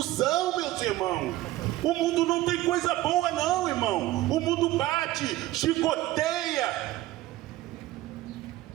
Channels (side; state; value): left; quieter; 16.3 dB